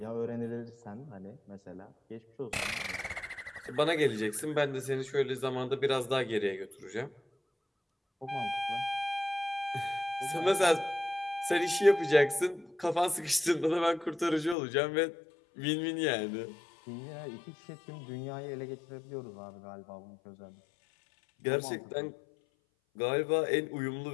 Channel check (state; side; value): drops out; right; at 14.6 s